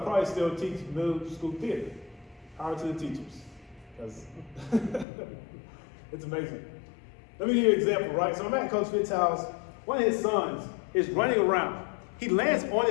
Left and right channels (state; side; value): drops out; right; at 5.1 s